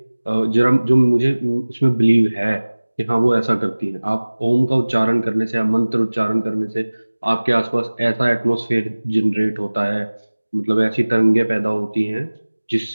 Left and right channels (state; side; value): inverted; both; correlation -1.00